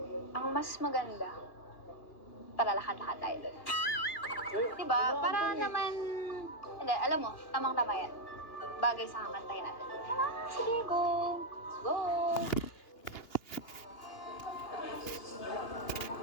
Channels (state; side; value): late; right; 2.8 ms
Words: ang mas maganda, para lahat-lahat tayo doon. Diba? Para naman, hindi, alam mo, tamang-tama yan. Bagay sa kakantayin natin. Sige, go! Let's go!